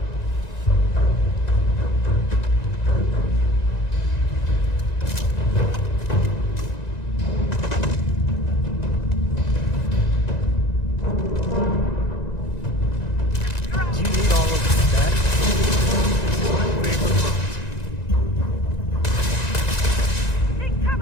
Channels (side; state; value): right; late; 1.9 ms